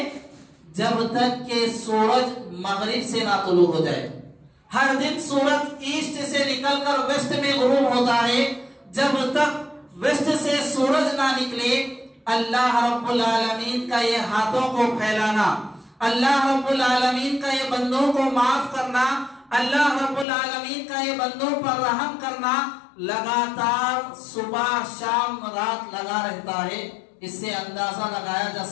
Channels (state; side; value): drops out; right; at 20.2 s